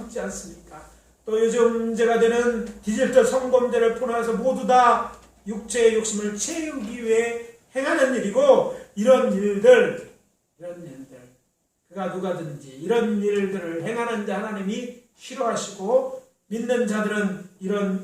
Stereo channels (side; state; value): both; identical; correlation 1.00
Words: 않습니까? 또 요즘 문제가 되는 디지털 성범죄를 포함해서 모두 다 육체의 욕심을 채우기 위해 행하는 일이고, 이런 일들 그가 누가든지 이런 일들을 행하는 자 하나님이 싫어하시고, 믿는 자들은 이런